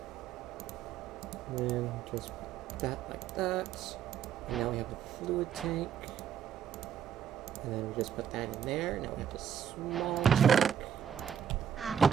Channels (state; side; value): quieter; left; 8.5 dB